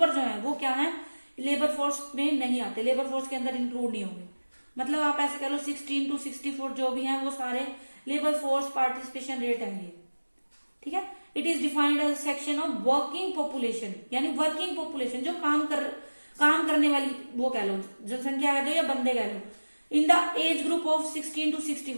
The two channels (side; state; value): both; inverted; correlation -1.00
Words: जो है वो क्या है, लेबर फोर्स में नहीं आते, लेबर फोर्स के अंदर इंक्लूड नहीं होंगे। मतलब आप ऐसे कह लो 16 to 64 जो भी हैं वो सारे लेबर फोर्स पार्टिसिपेशन रेट है ये। ठीक है, it is defined as section of working population, यानी वर्किंग पॉपुलेशन जो काम करने वाली वो कह लो, जनसंख्या कह दो या बंदे कह लो, in the age group of 16 to